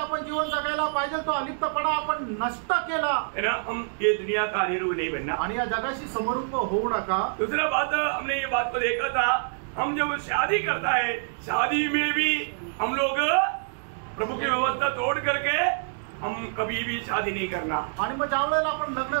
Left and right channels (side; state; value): left; silent; digital silence